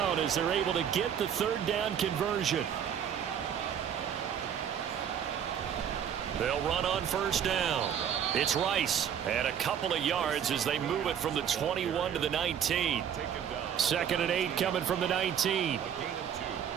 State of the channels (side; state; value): left; quieter; 8.8 dB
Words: as they're able to get the 3rd down conversion. They'll run on 1st down. It's Rice, and a couple of yards as they move it from the 21 to the 19. 2nd and 8 coming from the 19.